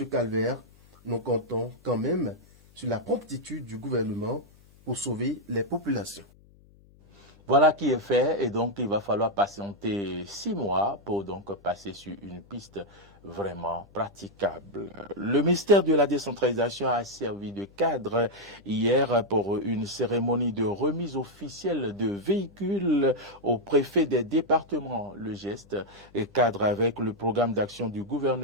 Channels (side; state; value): left; noise; hum, 27 dB below the sound